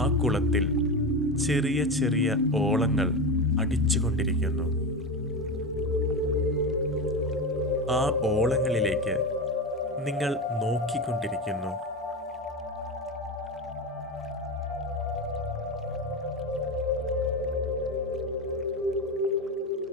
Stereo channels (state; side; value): normal; both; correlation 0.20